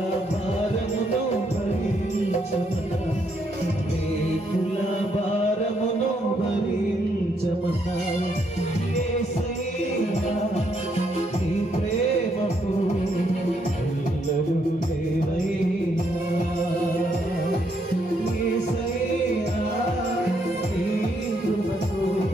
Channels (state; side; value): normal; both; correlation 0.74